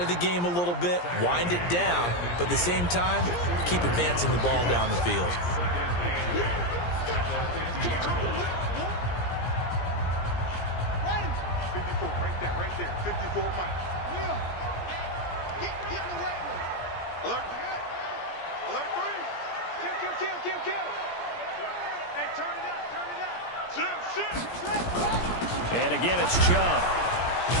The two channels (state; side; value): late; right; 17 ms